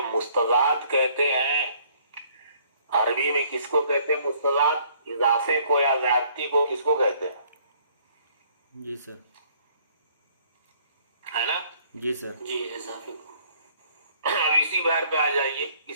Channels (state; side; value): inverted; both; correlation -0.61